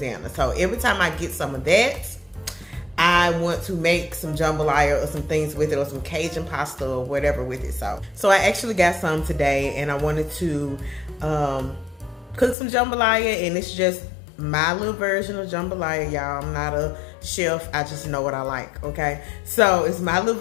So every time I get some of that, I want to make some jambalaya or some things with it, or some Cajun pasta or whatever with it. So I actually got some today, and I wanted to cook some jambalaya, and it's just my little version of jambalaya, y'all. I'm not a chef. I just know what I like, okay? So it's my little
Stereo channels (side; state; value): right; drops out; at 12.6 s